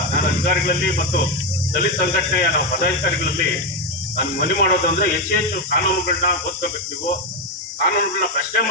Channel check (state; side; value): normal; both; correlation 0.07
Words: ನಾನು ಅಧಿಕಾರಿಗಳಲ್ಲಿ ಮತ್ತು ದಲಿತ ಸಂಘಟನೆಯ ನಾವು ಪದಾಧಿಕಾರಿಗಳಲ್ಲಿ ನಾನು ಮನವಿ ಮಾಡೋದು ಅಂದ್ರೆ ಹೆಚ್ಚು ಕಾನೂನುಗಳನ್ನ ಓದ್ಕೋಬೇಕು. ನೀವು ಕಾನೂನುಗಳನ್ನ ಪ್ರಶ್ನೆ